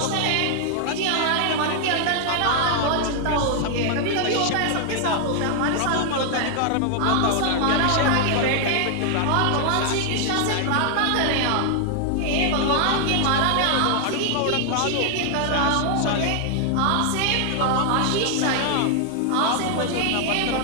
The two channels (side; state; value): both; different; correlation 0.00